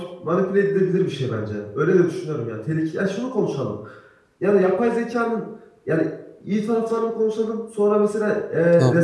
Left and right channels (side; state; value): both; identical; correlation 1.00